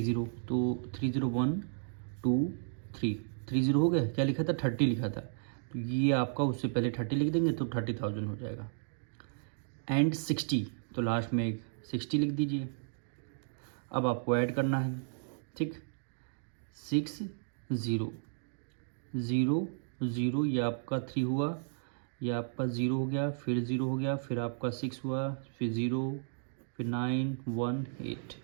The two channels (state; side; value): silent; left; digital silence